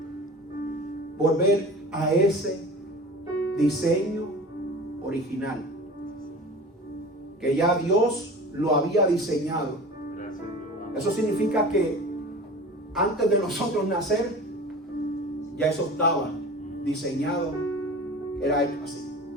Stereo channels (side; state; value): both; normal; correlation 0.38